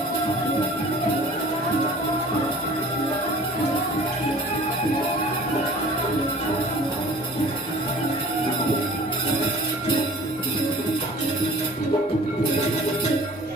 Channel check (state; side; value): normal; both; correlation 0.46